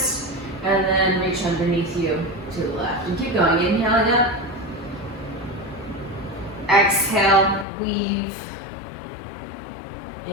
And then reach underneath you to the left. And keep going, inhaling up. Exhale, weave.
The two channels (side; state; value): right; drops out; at 7.7 s